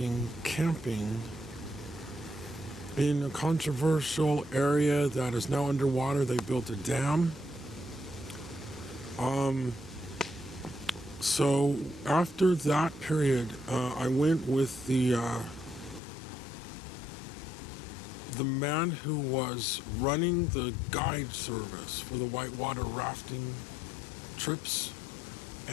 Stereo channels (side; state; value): right; drops out; at 16.0 s